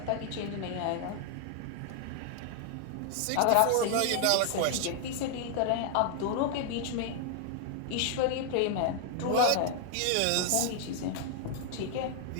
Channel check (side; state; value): both; different; correlation 0.00